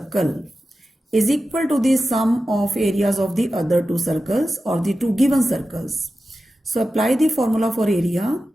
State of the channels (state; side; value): normal; both; correlation 0.93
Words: is equal to the sum of areas of the other two circles or the two given circles. So apply the formula for area.